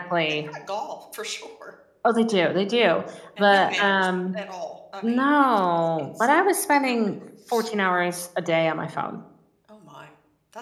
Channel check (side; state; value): both; identical; correlation 1.00